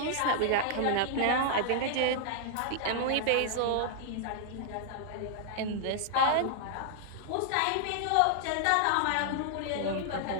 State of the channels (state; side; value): different; both; correlation -0.01